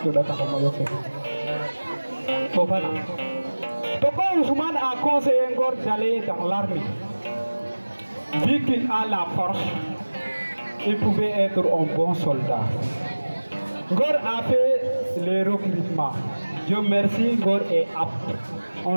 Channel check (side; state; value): both; inverted; correlation -1.00